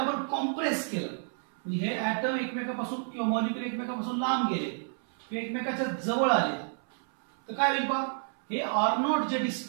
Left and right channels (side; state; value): left; silent; 58 dB below the other